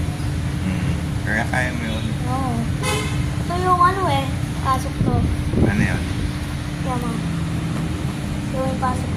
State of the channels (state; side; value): identical; both; correlation 1.00